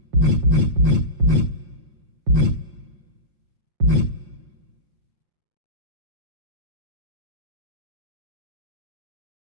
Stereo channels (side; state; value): left; late; 5.7 ms